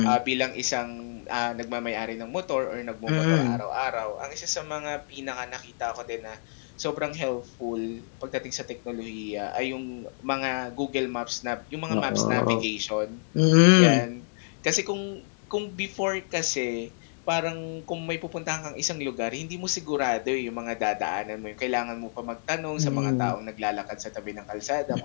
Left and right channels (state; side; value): silent; right; 59 dB below the other